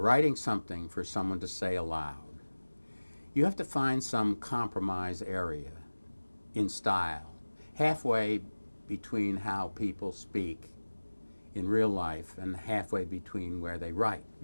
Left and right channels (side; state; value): both; inverted; correlation -1.00